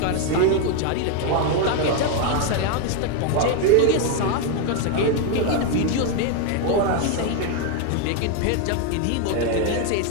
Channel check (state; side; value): different; both; correlation 0.01